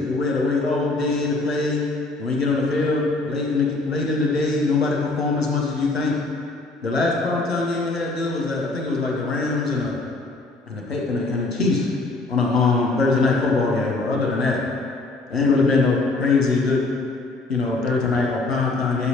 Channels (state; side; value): quieter; right; 3.2 dB